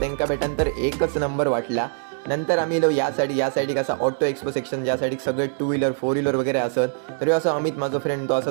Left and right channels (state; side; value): silent; left; digital silence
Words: भेटानंतर एकच नंबर वाटला. नंतर आम्ही या साईड असा ऑटो एक्सपो सेक्शन, ज्या साईड सगळे 2 व्हीलर 4 व्हीलर वगैरे असत. तरी असं अमित माझा फ्रेंड तो असा